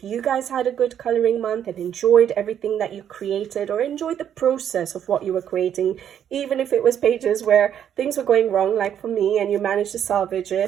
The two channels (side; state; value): left; quieter; 9.4 dB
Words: you guys had a good coloring month and enjoyed everything that you created, or enjoyed the process of what you were creating, even if it was pages where things were going wrong, like for me, and you managed to salvage